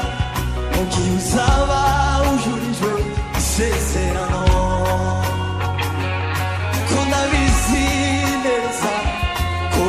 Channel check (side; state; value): both; identical; correlation 1.00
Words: mu gihe uzaba ujurijwe isezerano ko ndabizi neza ko